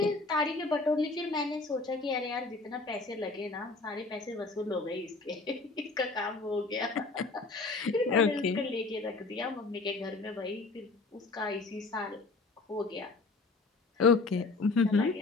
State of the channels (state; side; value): quieter; right; 3.7 dB